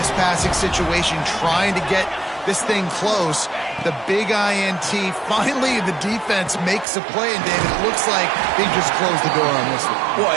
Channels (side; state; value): left; drops out; at 6.9 s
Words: passing situation trying to get this thing close. The big INT, finally the defense makes a play, and David, it looks like they just closed the door on this one. Well,